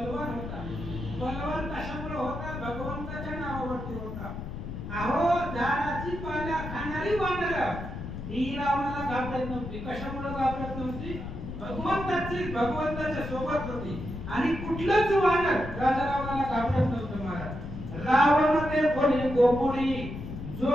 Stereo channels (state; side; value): noise; left; rumble, 8 dB below the sound